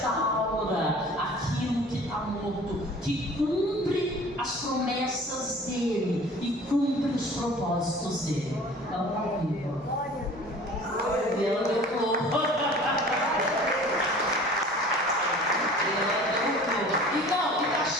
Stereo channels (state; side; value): normal; both; correlation 0.45